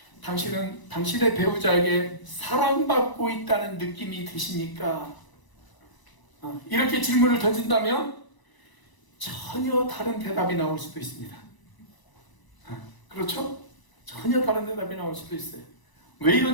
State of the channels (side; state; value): right; late; 1.0 ms